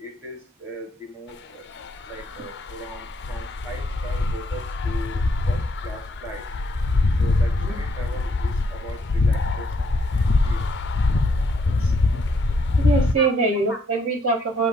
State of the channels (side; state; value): both; normal; correlation 0.72